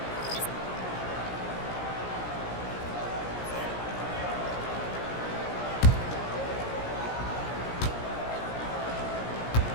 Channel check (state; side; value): late; right; 17 ms